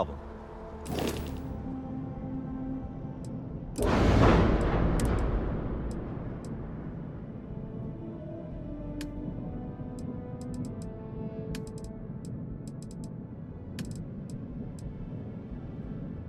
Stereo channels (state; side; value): identical; both; correlation 1.00